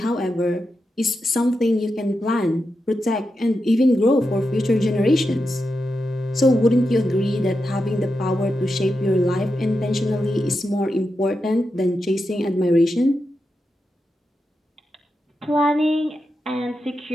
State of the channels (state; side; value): normal; both; correlation 0.88